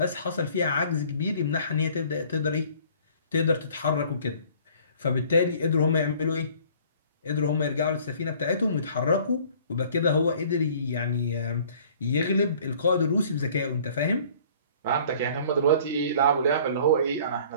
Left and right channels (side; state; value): both; inverted; correlation -0.53